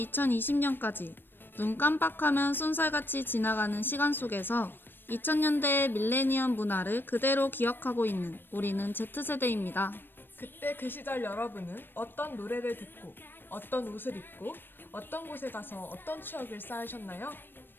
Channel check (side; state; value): right; late; 0.096 ms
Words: 2020년까지 눈 깜빡하면 쏜살같이 지나가는 시간 속에서 2000년대의 밀레니엄 문화를 그대로 기억하고 있는 우리는 Z세대입니다. 그때 그 시절 여러분은 어떤 노래를 듣고 어떤 옷을 입고 어떤 곳에 가서 어떤 추억을 쌓으셨나요?